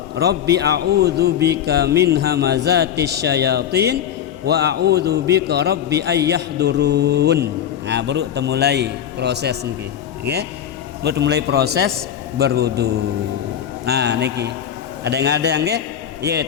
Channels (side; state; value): right; quieter; 9.6 dB